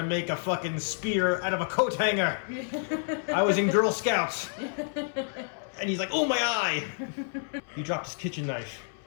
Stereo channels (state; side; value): silent; right; 59 dB below the other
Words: make a fucking spear out of a coat hanger. I was in Girl Scouts. And he's like, oh, my eye. He dropped his kitchen knife.